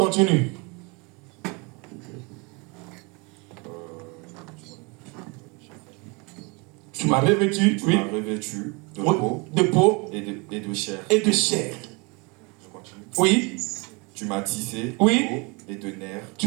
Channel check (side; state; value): left; quieter; 29.3 dB